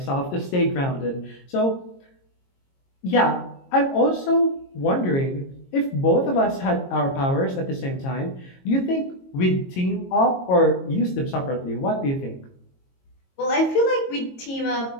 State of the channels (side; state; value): right; late; 22 ms